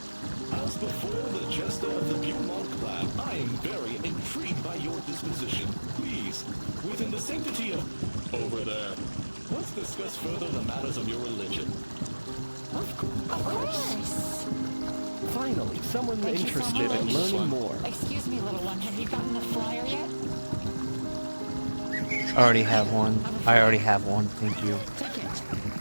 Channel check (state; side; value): inverted; both; correlation -1.00